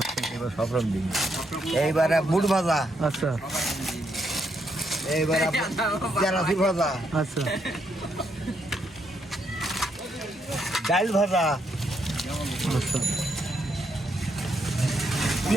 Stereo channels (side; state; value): both; normal; correlation 0.77